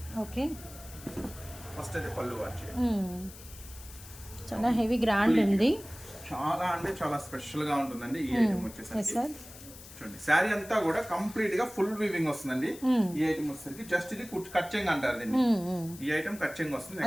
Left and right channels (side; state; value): left; noise; hiss, 17 dB below the sound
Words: ఓకే, ఫస్ట్ అయితే పళ్ళు వాచ్. చాలా హెవీ గ్రాండ్ ఉంది. చాలా అంటే చాలా స్పెషల్ గా ఉంటుందండి ఈ ఐటమ్ వచ్చేసరికి. చూడండి శారీ అంతా కూడా కంప్లీట్ గా ఫుల్ వీవింగ్ వస్తుందండి. ఈ ఐటమ్ వచ్చేసరికి జస్ట్ ఇది కట్చింగ్ అంటారు దీన్ని. ఈ ఐటమ్ కట్చింగ్ వస్తుంది.